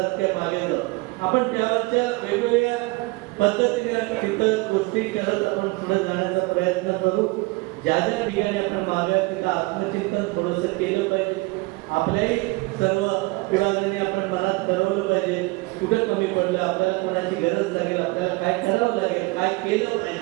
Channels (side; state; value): left; quieter; 24.9 dB